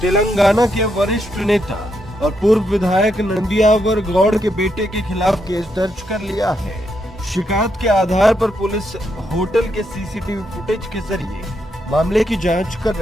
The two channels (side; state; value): both; normal; correlation 0.80